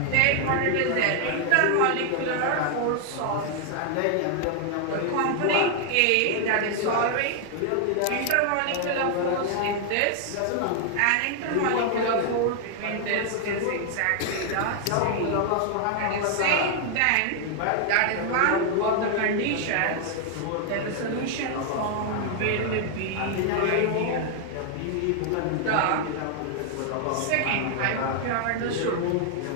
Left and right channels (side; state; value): both; different; correlation 0.00